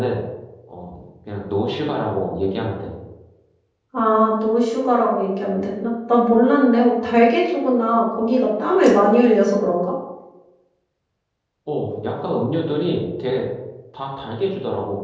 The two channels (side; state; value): both; identical; correlation 1.00